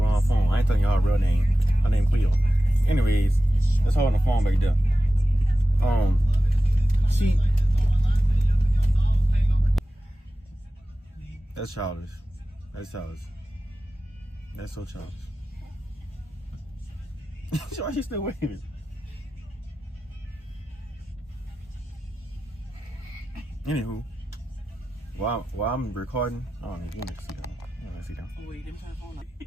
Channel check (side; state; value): both; normal; correlation 0.94